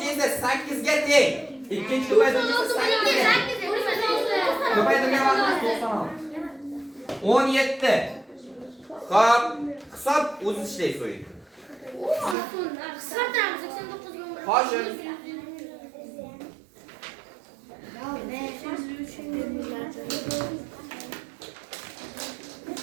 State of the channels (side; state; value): left; drops out; at 12.4 s